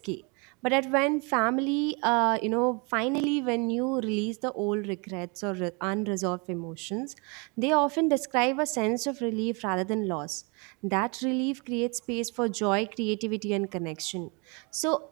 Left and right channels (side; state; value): left; quieter; 31.5 dB